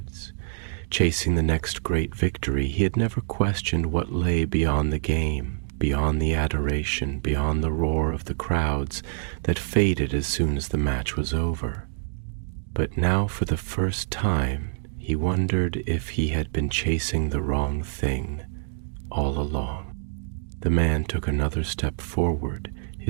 chasing the next great victory. He had never questioned what lay beyond the game, beyond the adoration, beyond the roar of the crowds that faded as soon as the match was over. But now, for the first time, he wondered if he had been chasing the wrong thing all along. The man took another step forward,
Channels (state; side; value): silent; left; digital silence